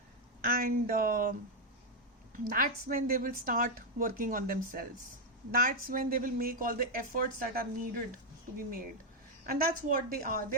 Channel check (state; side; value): normal; both; correlation 0.01